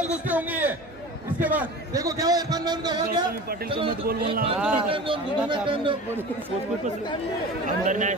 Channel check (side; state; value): both; normal; correlation 0.35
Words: कुश्ती होंगी है इसके बाद देखो क्या हुआ इरफान भाई उनका हुआ क्या पाटिल को मत बोल बोलना अंदर नाही